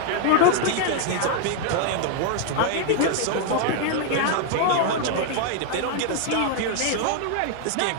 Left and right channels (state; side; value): different; both; correlation 0.00